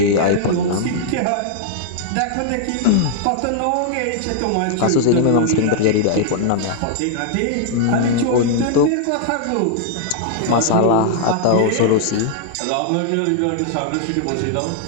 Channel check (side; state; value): both; different; correlation -0.01